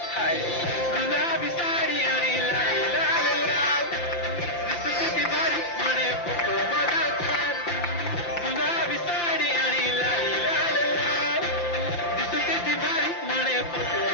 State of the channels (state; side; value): late; right; 5.8 ms